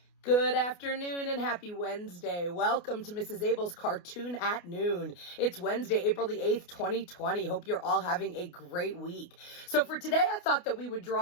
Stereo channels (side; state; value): right; late; 29 ms